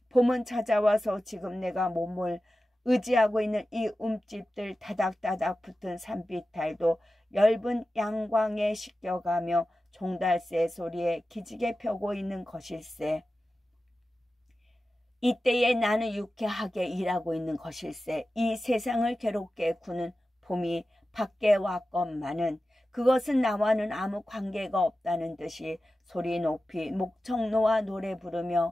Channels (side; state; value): both; normal; correlation 0.94